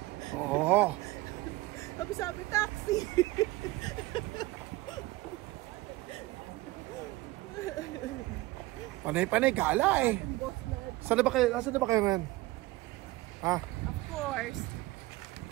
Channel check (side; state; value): left; quieter; 19.6 dB